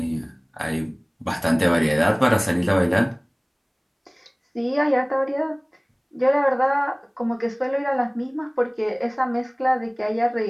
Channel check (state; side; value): identical; both; correlation 1.00